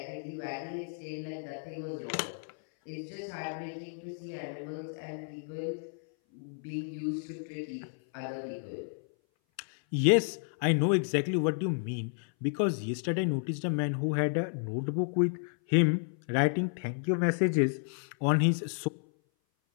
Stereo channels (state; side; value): silent; right; 57 dB below the other